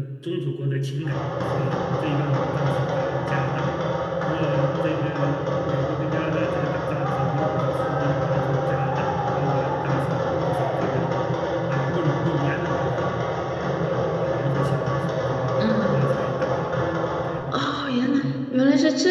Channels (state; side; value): identical; both; correlation 1.00